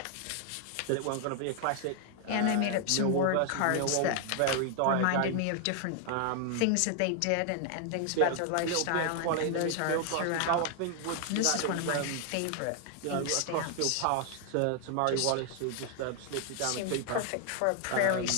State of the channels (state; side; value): different; both; correlation 0.00